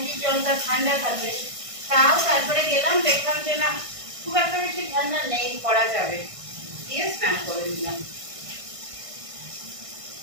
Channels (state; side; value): late; left; 1.5 ms